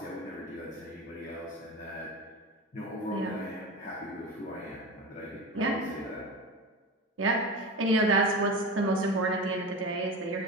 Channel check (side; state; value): both; normal; correlation 0.27